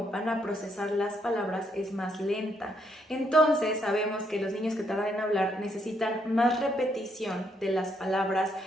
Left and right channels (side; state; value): both; normal; correlation 0.74